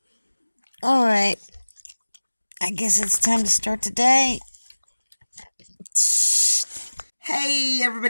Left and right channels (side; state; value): both; inverted; correlation -1.00